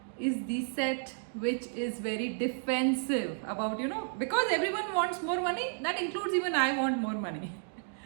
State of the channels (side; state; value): left; silent; 56 dB below the other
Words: is the set which is very defensive about, because everyone wants more money, that includes even I want more money.